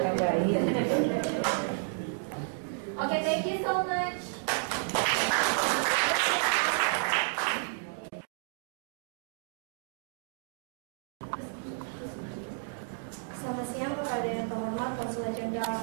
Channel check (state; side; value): silent; left; digital silence